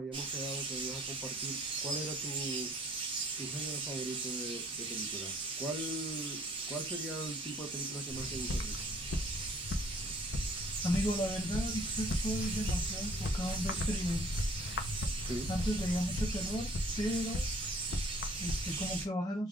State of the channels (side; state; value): both; normal; correlation 0.57